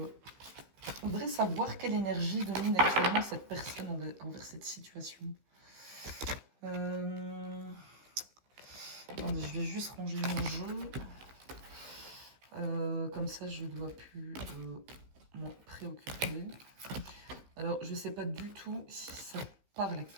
voudrais savoir quelle énergie domine actuellement cette personne envers cette situation. Attendez, je vais juste ranger mon jeu. Comme ça, je ne dois plus m'en préoccuper. Alors, je ne sais pas du tout si ça parle à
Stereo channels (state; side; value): late; left; 15 ms